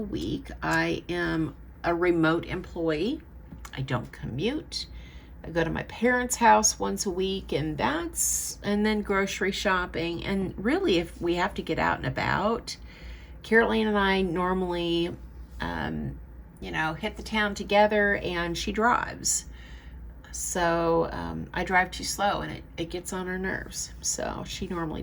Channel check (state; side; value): identical; both; correlation 1.00